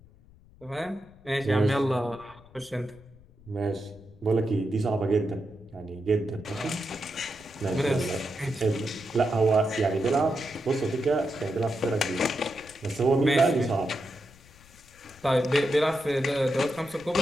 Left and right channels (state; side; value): noise; left; rumble, 25 dB below the sound